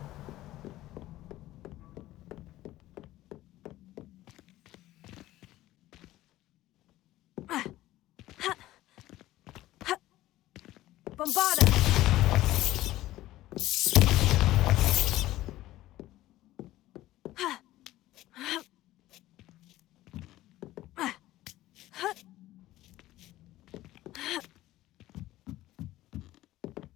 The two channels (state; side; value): quieter; right; 15.8 dB